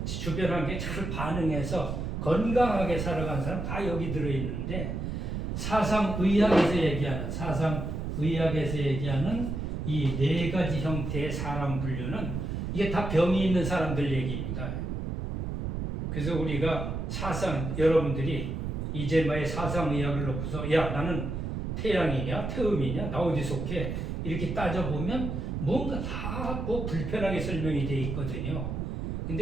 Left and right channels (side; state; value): right; noise; rumble, 3 dB below the sound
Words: 주변 환경에 잘 반응해서 건강하게 살아간 사람 다 여기 들어 있는데 사상의학에서 얘기하는 이 네 가지 형태의 사람 분류는 이게 다 병이 있는 사람들 얘기입니다. 그래서 우리가 여러분들이 이제마의 사상의학을 놓고서 야 나는 태양이냐 태음이냐 나 어디 속해 이렇게 따져보면 뭔가 다 뭐 불편하게 설명이 돼 있거든요.